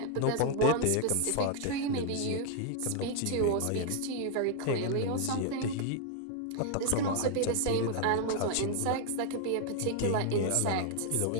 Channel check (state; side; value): different; both; correlation 0.00